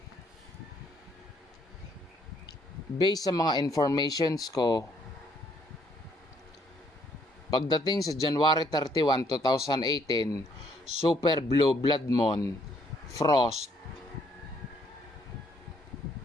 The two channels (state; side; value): normal; both; correlation 0.68